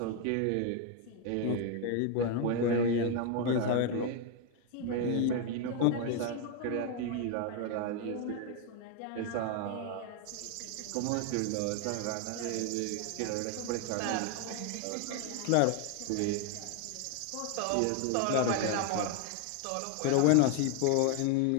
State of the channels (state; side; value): different; both; correlation 0.01